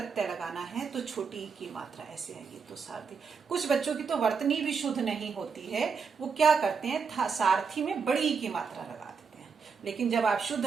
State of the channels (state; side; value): quieter; left; 5.6 dB